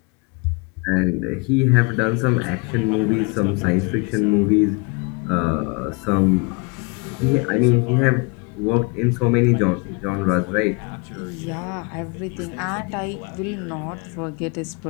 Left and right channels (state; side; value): quieter; right; 31.1 dB